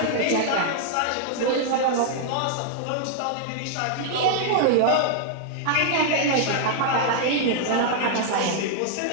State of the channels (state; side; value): different; both; correlation -0.01